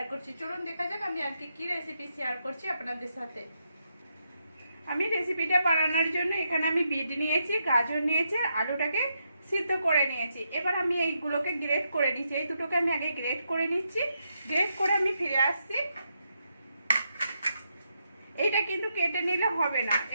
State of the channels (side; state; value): both; inverted; correlation -0.81